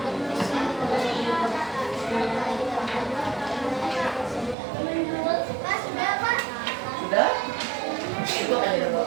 Sudah? Itu akan jadi apa?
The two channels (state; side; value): drops out; left; at 4.5 s